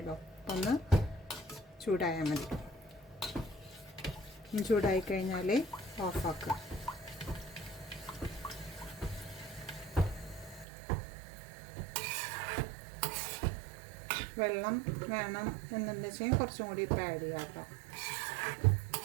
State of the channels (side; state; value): left; drops out; at 10.7 s